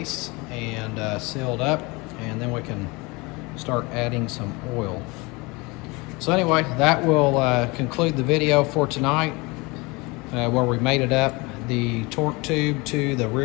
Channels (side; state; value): right; quieter; 25.6 dB